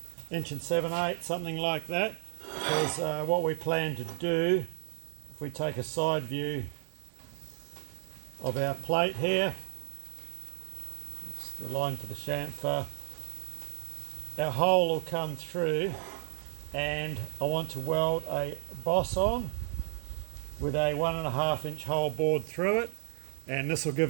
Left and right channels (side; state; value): left; silent; 56 dB below the other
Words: inch, 1 7/8, something like that, because what we plan to do, if we take a side view of our plate here, it's the line for the chamfer, our hole will come through and I want to weld a boss on with a 1.5 inch hole bored through it, and this will give